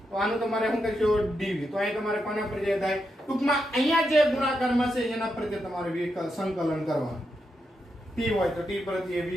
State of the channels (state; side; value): normal; both; correlation 0.84